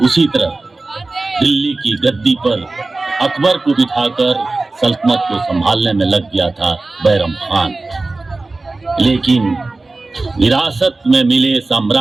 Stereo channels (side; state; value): left; quieter; 3.3 dB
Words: उसी तरह दिल्ली की गद्दी पर अकबर को बिठाकर सल्तनत को संभालने में लग गया था बैरम खान। लेकिन विरासत में मिले